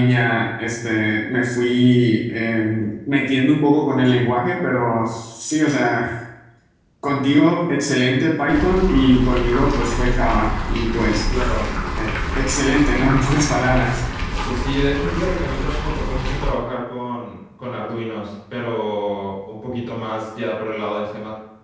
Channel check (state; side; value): identical; both; correlation 1.00